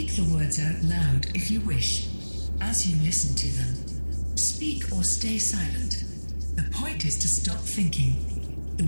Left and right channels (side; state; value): both; inverted; correlation -1.00